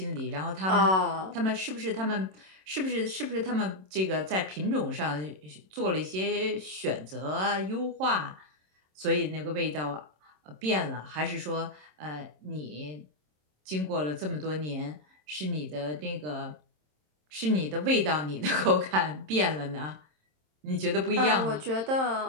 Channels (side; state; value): left; late; 27 ms